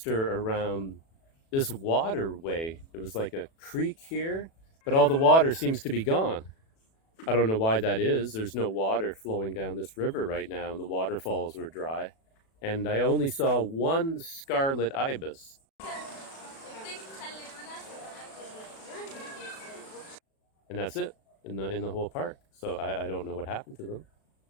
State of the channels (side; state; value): right; late; 36 ms